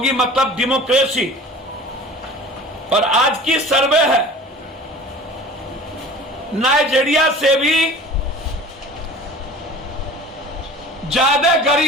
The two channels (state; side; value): normal; both; correlation 0.42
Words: मतलब डेमोक्रेसी। और आज की सर्वे है नाइजीरिया से भी ज्यादा